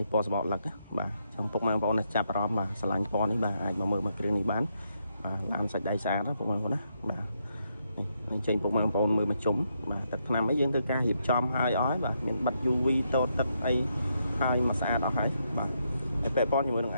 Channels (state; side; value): inverted; both; correlation -0.79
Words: េះពណ៌សបកលឹកបាទចំពុកម៉ែបងប្អូនចាប់អារម្មណ៍បាទឆ្លាញ់ពណ៌នេះបាទអាចមកមើលមកគ្រឿងនេះបានបាទឡានសាច់ដៃស្អាតណាពុកម៉ែបងប្អូនណាបាទនេះចេញពុកម៉ែបងប្អូនមើលមកជុំបាទទឹកថ្នាំអីយើងធ្វើការរៀបចំឲ្យអស់ហើយបាទមានបិទ UV តូតទឹកអីហើយមកស្អាតអស់ហើយបាទតែពាក់ព័ន្ធជាមួយនឹង